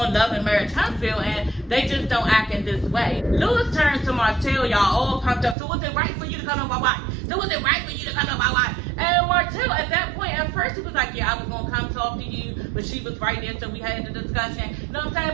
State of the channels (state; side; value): drops out; left; at 5.6 s